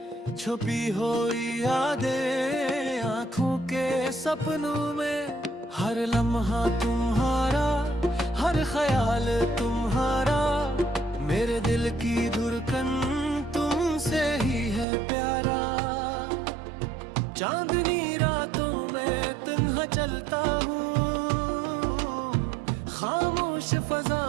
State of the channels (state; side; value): drops out; left; at 14.9 s